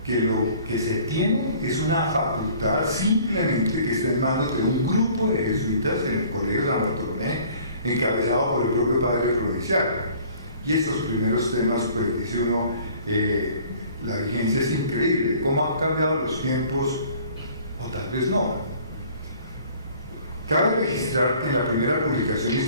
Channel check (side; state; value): both; inverted; correlation -0.53